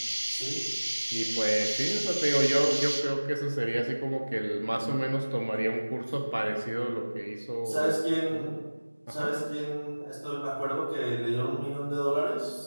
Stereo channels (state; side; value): inverted; both; correlation -1.00